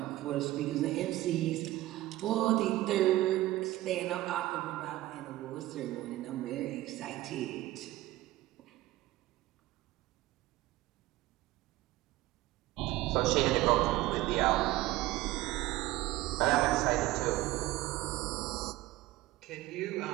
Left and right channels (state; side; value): quieter; left; 17.1 dB